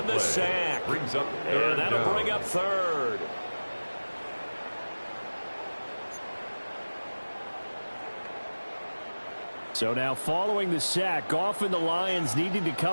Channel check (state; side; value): inverted; both; correlation -1.00